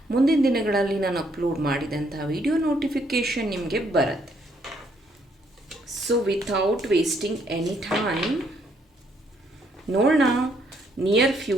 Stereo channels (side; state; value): both; normal; correlation 0.70